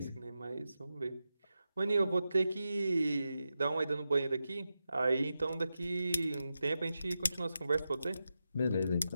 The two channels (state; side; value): inverted; both; correlation -0.90